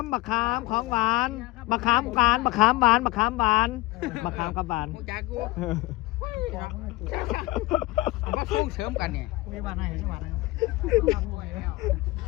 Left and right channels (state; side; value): quieter; right; 19.8 dB